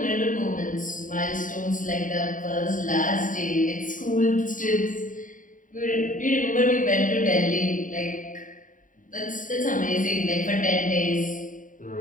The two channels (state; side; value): late; right; 0.38 ms